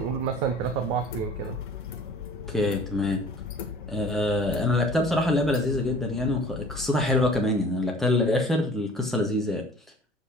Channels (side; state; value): both; normal; correlation 0.47